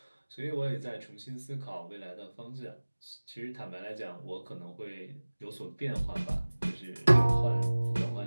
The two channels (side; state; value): both; inverted; correlation -1.00